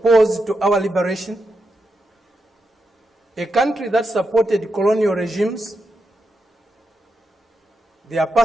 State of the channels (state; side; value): normal; both; correlation 0.86